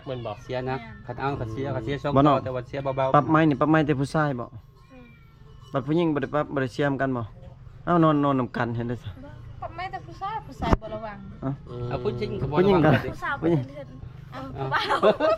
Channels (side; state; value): both; identical; correlation 1.00